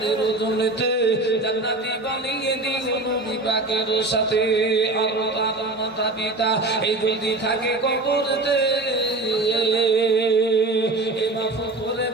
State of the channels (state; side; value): quieter; left; 3.0 dB